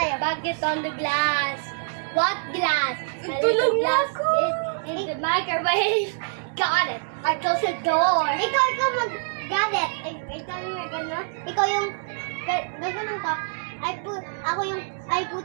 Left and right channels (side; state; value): left; silent; digital silence